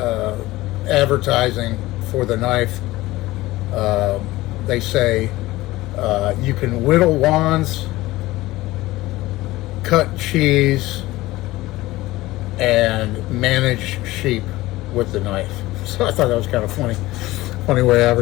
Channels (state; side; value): quieter; right; 18.3 dB